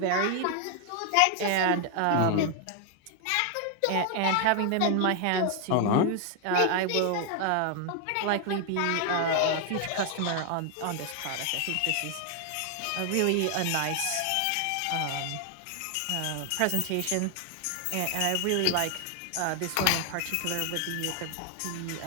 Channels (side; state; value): both; different; correlation 0.00